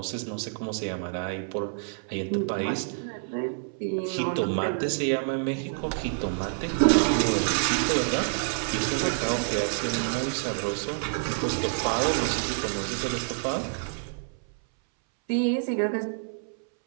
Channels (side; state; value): left; silent; 60 dB below the other